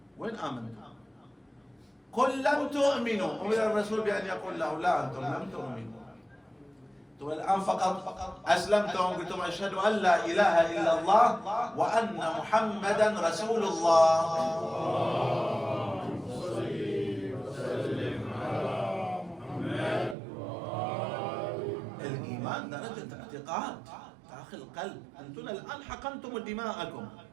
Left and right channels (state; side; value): drops out; left; at 20.2 s